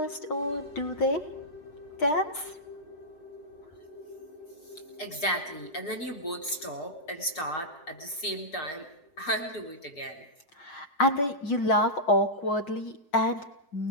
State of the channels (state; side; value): late; right; 6.1 ms